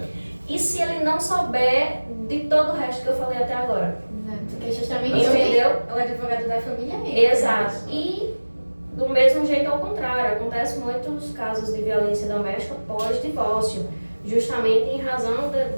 E se ele não souber de todo o resto que eu falei até agora? Exato, porque justamente entendeu? O advogado da família é ele. Exato. E do mesmo jeito ao contrário, acontece muitos casos de violência doméstica pós-divórcio, justamente em razão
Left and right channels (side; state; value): both; inverted; correlation -1.00